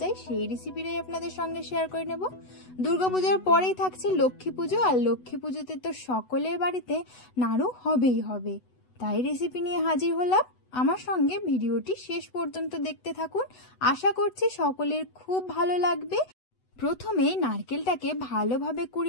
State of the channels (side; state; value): right; late; 8.0 ms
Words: যায় সেই রেসিপিটাই আপনাদের সঙ্গে শেয়ার করে নেব। দুর্গাপূজার পরেই থাকছে লক্ষ্মী পুজো, আর লক্ষ্মী পুজোতে তো সকলের বাড়িতে নাড়ু হবেই হবে। তাই রেসিপি নিয়ে হাজির হলাম। আমার সঙ্গে ভিডিওটি শেষ পর্যন্ত দেখতে থাকুন, আশা করছি সকলের খুব ভালো লাগবে। প্রথমে নারকেলটাকে ভালোভাবে